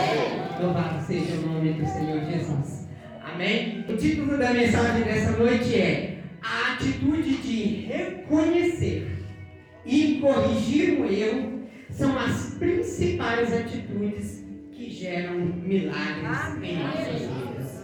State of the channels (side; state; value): both; identical; correlation 1.00